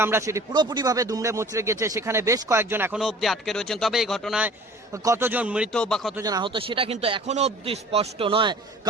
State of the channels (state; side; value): normal; both; correlation 0.47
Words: সেটি পুরোপুরিভাবে দুমড়ে মুচড়ে গেছে, সেখানে বেশ কয়েকজন এখনো অবধি আটকে রয়েছেন। তবে এই ঘটনায় কতজন মৃত বা কতজন আহত সেটা কিন্তু এখনো অবধি স্পষ্ট নয়,